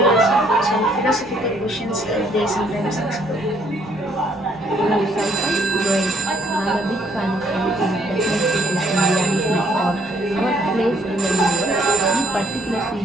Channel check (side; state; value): both; normal; correlation 0.66